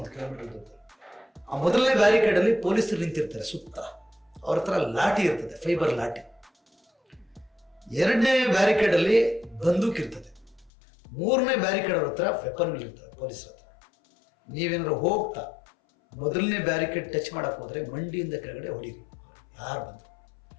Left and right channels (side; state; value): right; drops out; at 10.7 s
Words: ಕಿಲೋಮೀಟರ್ ಇರ್ತಾರೆ. ಆ ಮೊದಲನೇ ಬ್ಯಾರಿಕೇಡಲ್ಲಿ ಪೊಲೀಸರು ನಿಂತಿರ್ತಾರೆ ಸುತ್ತ, ಅವ್ರ ಹತ್ರ ಲಾಠಿ ಇರ್ತದೆ, ಫೈಬರ್ ಲಾಠಿ. 2ನೇ ಬ್ಯಾರಿಕೇಡಲ್ಲಿ ಬಂದೂಕ್ ಇರ್ತದೆ. 3ನೇ ಬ್ಯಾರಿಕೇಡ್ ಅವ್ರ ಹತ್ರ ವೆಪನ್ಗಳಿರ್ತವೆ ಪೊಲೀಸರ ಹತ್ರ. ನೀವೇನಾದ್ರು ಹೋಗ್ತಾ ಮೊದಲನೇ ಬ್ಯಾರಿಕೇಡ್ ಟಚ್ ಮಾಡಕ್ಕೆ ಹೋದರೆ ಮಂಡಿಯಿಂದ ಕೆಳಗಡೆ ಹೊಡೀರಿ, ಯಾರು ಬಂದು.